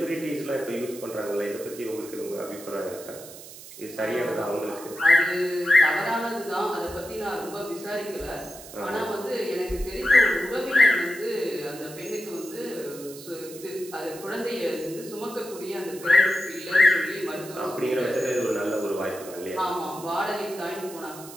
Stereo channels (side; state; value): right; noise; hiss, 15 dB below the sound